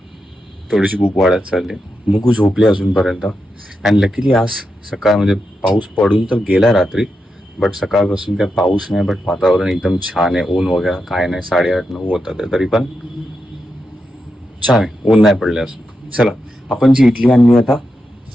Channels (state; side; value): normal; both; correlation 0.87